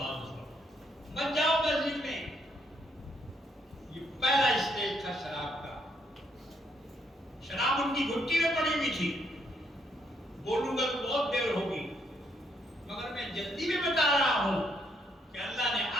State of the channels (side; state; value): both; normal; correlation 0.73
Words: مت جاؤ مسجد میں۔ یہ پہلا اسٹیج تھا شراب کا۔ شراب ان کی گھٹی میں پڑی ہوئی تھی۔ بولوں گا تو بہت دیر ہوگی، مگر میں جلدی میں بتا رہا ہوں کہ اللہ نے